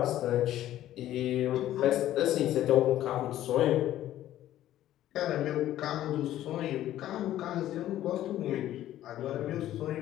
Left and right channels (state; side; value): quieter; right; 13.1 dB